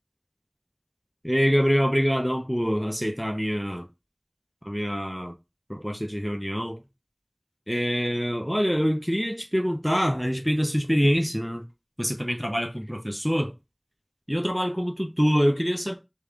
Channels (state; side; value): identical; both; correlation 1.00